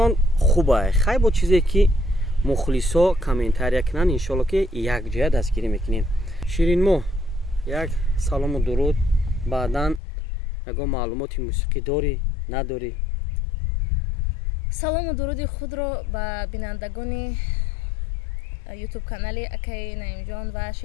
хубай. хай бо чизе ки мухлисо комментария кунанд, иншоалло ки якҷоя дастгирӣ мекунем. ширинмоҳ, як салому дуруд. баъдан ягон маълумоти мусиқӣ дорӣ, надорӣ? салому дуруди худро ба бинандагони ютуб канали акаи наимҷон ва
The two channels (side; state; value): right; drops out; at 10.0 s